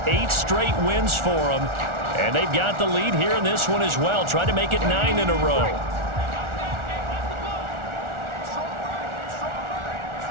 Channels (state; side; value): late; left; 1.4 ms